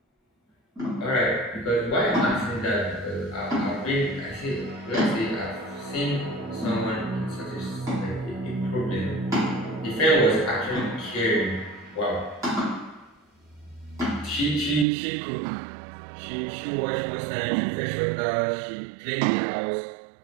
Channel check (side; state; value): left; drops out; at 14.9 s